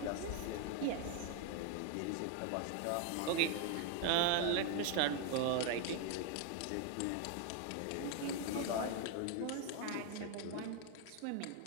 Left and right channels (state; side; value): different; both; correlation 0.01